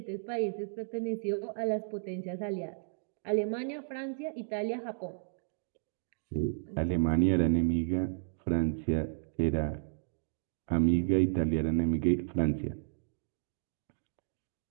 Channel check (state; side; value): silent; left; digital silence